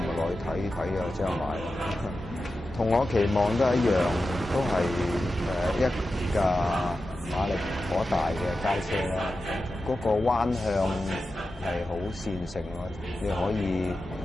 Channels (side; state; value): both; normal; correlation 0.92